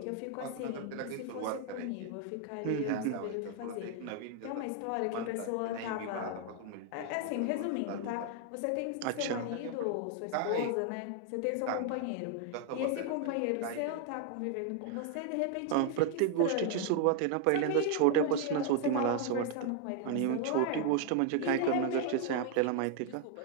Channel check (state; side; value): different; both; correlation 0.00